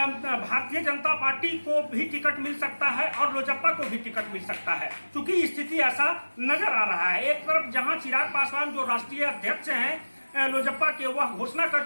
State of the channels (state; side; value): inverted; both; correlation -1.00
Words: जनता पार्टी को भी टिकट मिल सकता है और लोजप्पा को भी टिकट मिल सकता है, क्योंकि स्थिति ऐसा नजर आ रहा है। एक तरफ जहां चिराग पासवान जो राष्ट्रीय अध्यक्ष हैं लोजप्पा के, वह घोषणा कर